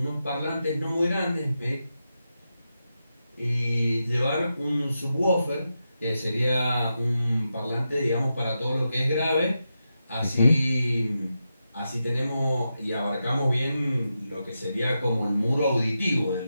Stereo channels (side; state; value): both; inverted; correlation -0.88